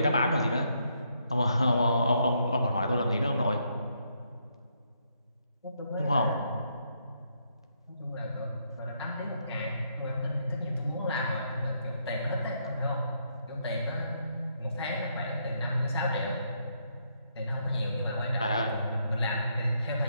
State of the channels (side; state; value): both; inverted; correlation -0.75